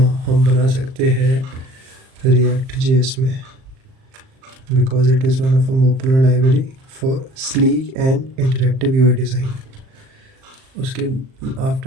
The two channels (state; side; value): late; left; 38 ms